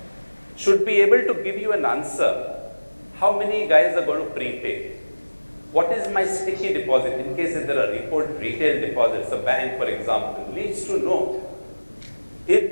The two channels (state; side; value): inverted; both; correlation -1.00